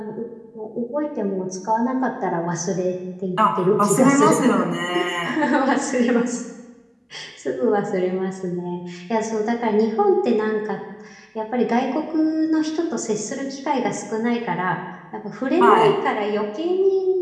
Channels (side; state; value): both; identical; correlation 1.00